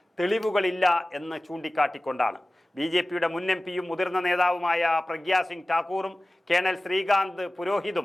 തെളിവുകളില്ല എന്ന് ചൂണ്ടിക്കാട്ടിക്കൊണ്ടാണ്. BJPയുടെ മുൻ MPയും മുതിർന്ന നേതാവുമായ പ്രഗ്യാ സിംഗ് ഠാക്കൂറും കേണൽ ശ്രീകാന്ത്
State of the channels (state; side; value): normal; both; correlation 0.97